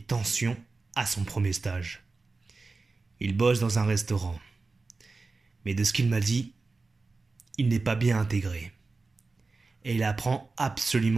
tensions à son premier stage. Il bosse dans un restaurant. Mais de ce qu'il m'a dit, il n'est pas bien intégré. Et il apprend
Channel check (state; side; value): quieter; left; 3.9 dB